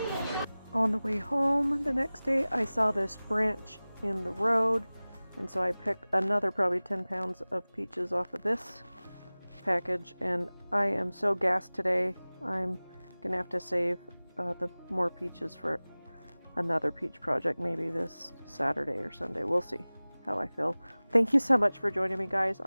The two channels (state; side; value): inverted; both; correlation -0.99